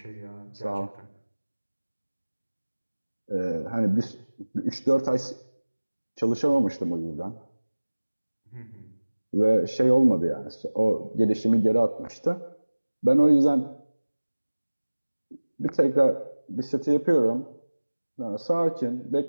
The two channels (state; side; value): inverted; both; correlation -1.00